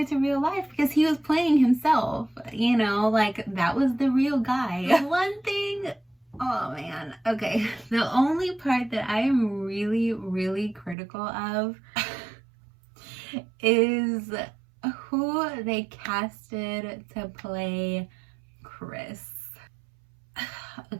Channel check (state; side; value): drops out; left; at 11.0 s